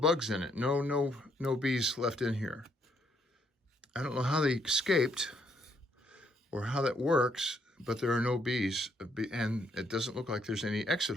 in it. No bees left in here. I don't know how they escaped or how that works, but there are no bees, and it doesn't look like there's any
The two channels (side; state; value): both; normal; correlation 0.72